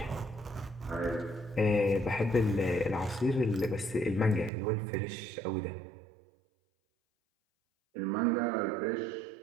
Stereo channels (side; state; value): left; drops out; at 4.5 s